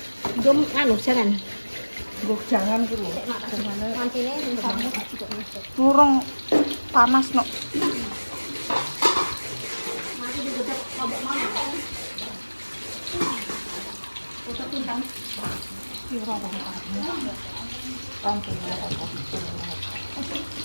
gom anu jangan Jangan dulu. mantine Ngurung panas no. mati digodok lombok mana foto pintang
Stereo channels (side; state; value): both; inverted; correlation -1.00